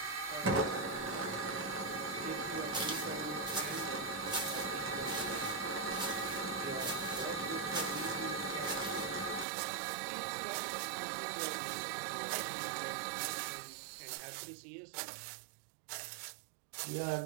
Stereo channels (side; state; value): left; drops out; at 9.5 s